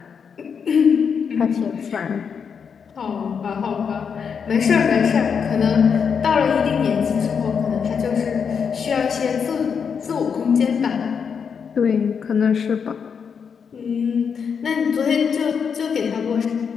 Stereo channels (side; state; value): right; quieter; 6.6 dB